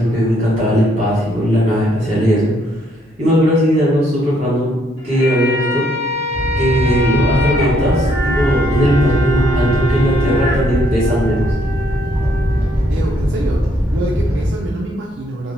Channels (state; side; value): normal; both; correlation 0.70